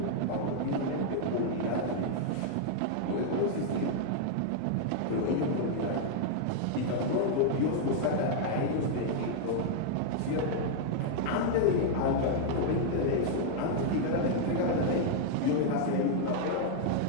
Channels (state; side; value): different; both; correlation -0.01